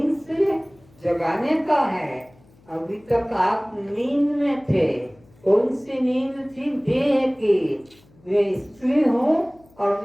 से जगाने का है। अभी तक आप नींद में थे। कौन सी नींद थी? देह की। मैं स्त्री हूँ और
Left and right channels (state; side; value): noise; left; hum, 29 dB below the sound